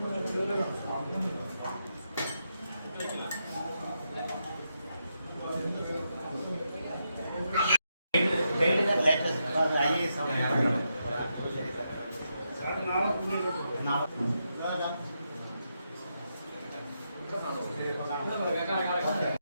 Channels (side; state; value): both; inverted; correlation -0.83